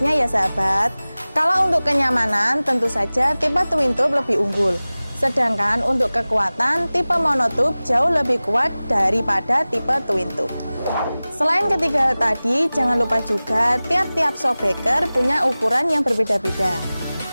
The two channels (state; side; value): inverted; both; correlation -0.98